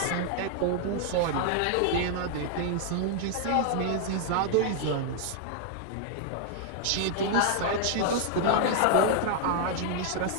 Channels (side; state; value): both; different; correlation 0.00